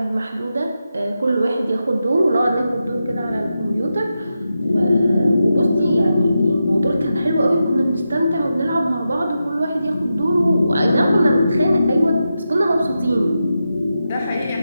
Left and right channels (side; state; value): both; inverted; correlation -0.89